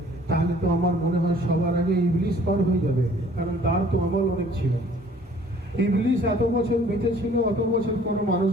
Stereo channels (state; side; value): normal; both; correlation 0.55